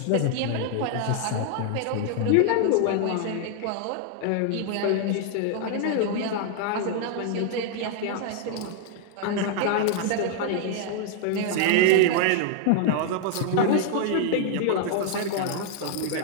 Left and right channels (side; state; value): both; different; correlation 0.00